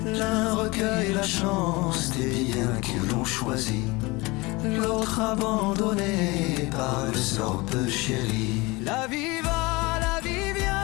L'un recueille la chance des biens qu'ils l'ont choisi, l'autre abandonné par le sort peu chéri. La vie va, la vie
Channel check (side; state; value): right; quieter; 23.8 dB